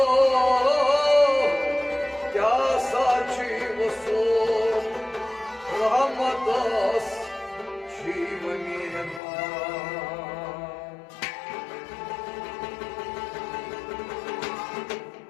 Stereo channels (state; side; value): drops out; right; at 9.2 s